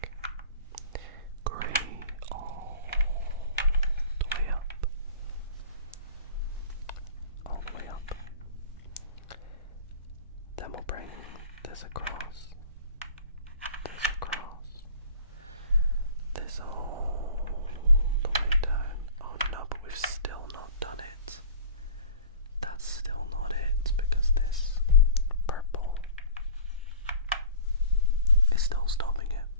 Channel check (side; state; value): both; inverted; correlation -0.41